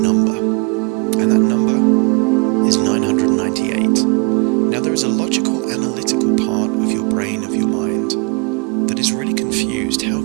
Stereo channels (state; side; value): quieter; left; 31.7 dB